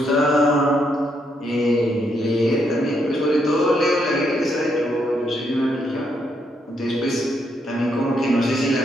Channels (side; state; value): both; normal; correlation 0.77